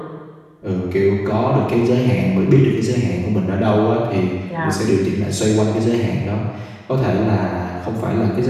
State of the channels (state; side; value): identical; both; correlation 1.00